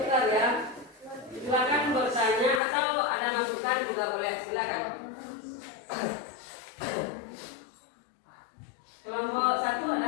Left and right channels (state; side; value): drops out; right; at 2.6 s